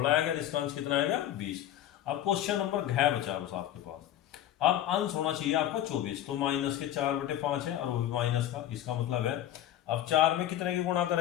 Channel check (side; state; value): right; quieter; 11.9 dB